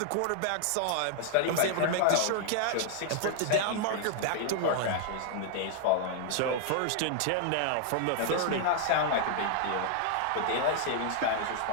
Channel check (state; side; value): different; both; correlation -0.01